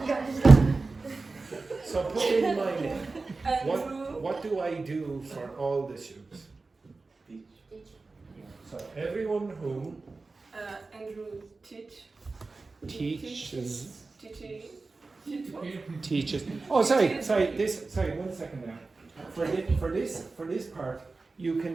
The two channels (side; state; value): left; quieter; 3.8 dB